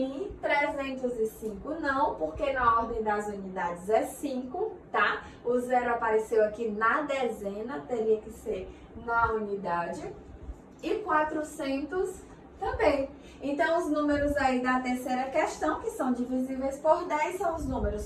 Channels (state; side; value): identical; both; correlation 1.00